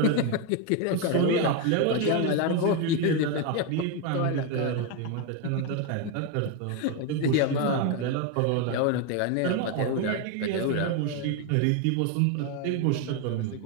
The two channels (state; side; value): different; both; correlation 0.02